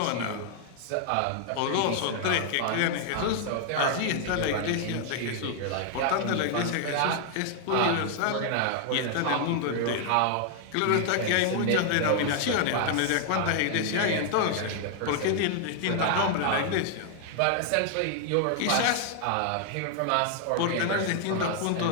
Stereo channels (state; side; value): different; both; correlation 0.00